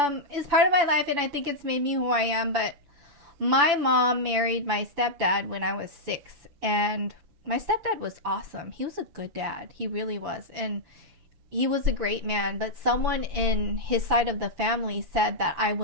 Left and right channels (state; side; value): late; left; 7.0 ms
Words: It's part of my life, and I think it's made me who I am. But my mom married my stepdad when I was 6, and my stepdad was awesome. He was a good dad. He really was. And he was a great man, but someone in his side of the family said that I